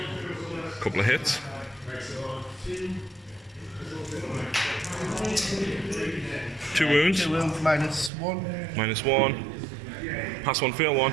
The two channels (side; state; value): left; drops out; at 8.1 s